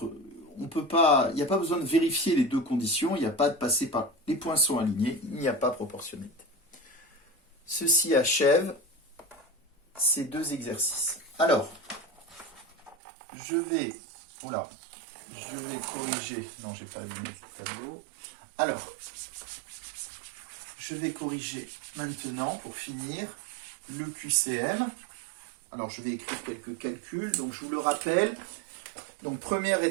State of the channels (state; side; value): drops out; left; at 13.0 s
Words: pas, il n'y a pas besoin de vérifier les deux conditions, il n'y a pas de passer par les points sont alignés, il n'y a pas proportionnalité. Ceci achève ces deux exercices. Alors, je vais corriger, non, j'ai pas allumé ce tableau. Alors, je vais corriger maintenant pour finir le QCM. Alors, je vais écrire quelques calculs. Donc, je vous le rappelle. Donc, première